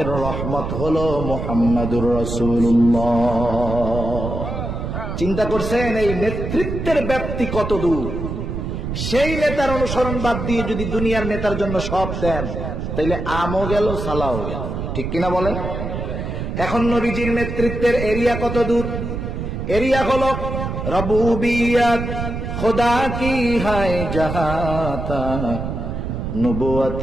রহমত হলো মুহাম্মাদুর রাসূলুল্লাহ। চিন্তা করছেন এই নেতৃত্বের ব্যাপ্তি কত দূর? সেই নেতার অনুসরণ বাদ দিয়ে যদি দুনিয়ার নেতার জন্য সব দেন, তাইলে আমও গেল, সালাও গেল, ঠিক কিনা বলেন? এখন নবীজির নেতৃত্বের এরিয়া কত দূর? এরিয়া হলো রবুবিয়ত খুদা কি হায় জাহাঁ তক,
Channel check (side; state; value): right; noise; rumble, 4 dB below the sound